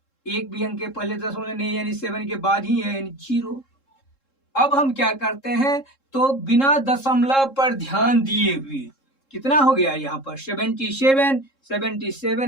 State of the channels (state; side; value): late; right; 3.7 ms